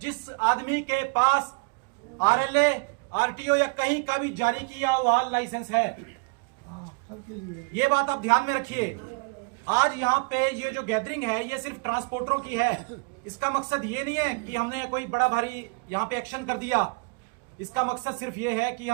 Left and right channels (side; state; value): left; quieter; 32.0 dB